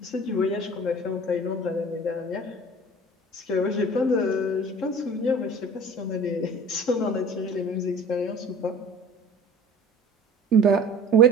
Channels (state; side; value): normal; both; correlation 0.43